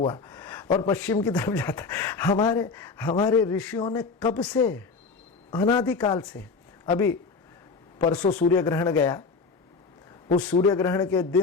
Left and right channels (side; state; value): right; quieter; 4.6 dB